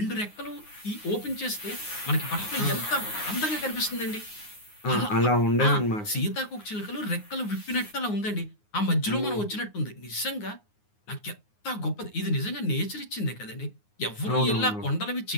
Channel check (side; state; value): right; late; 9.6 ms